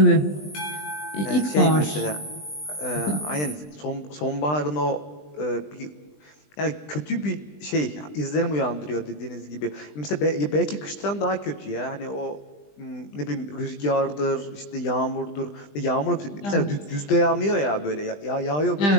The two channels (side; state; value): right; late; 20 ms